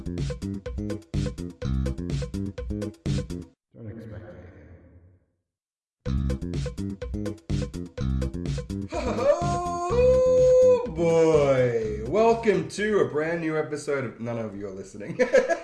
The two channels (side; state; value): both; identical; correlation 1.00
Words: Don't expect anything. Oh boy! Welcome to a brand new episode of... None of you are listening.